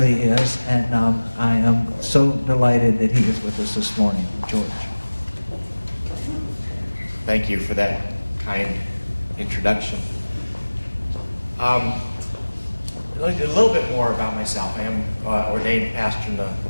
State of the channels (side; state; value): both; inverted; correlation -1.00